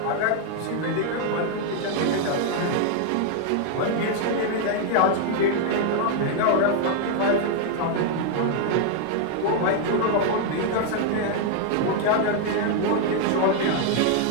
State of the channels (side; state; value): both; different; correlation 0.00